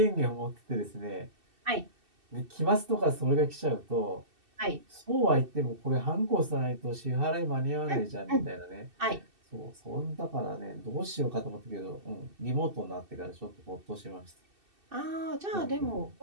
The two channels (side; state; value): left; late; 2.7 ms